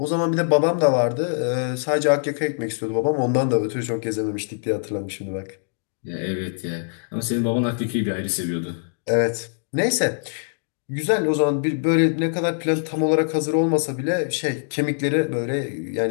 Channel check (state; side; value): silent; right; digital silence